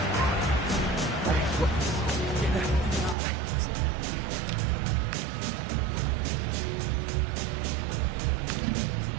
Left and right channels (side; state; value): left; drops out; at 3.2 s